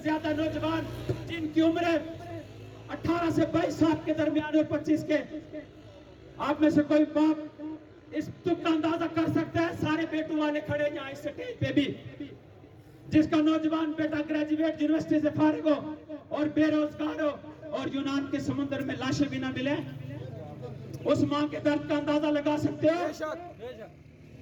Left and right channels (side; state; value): both; identical; correlation 1.00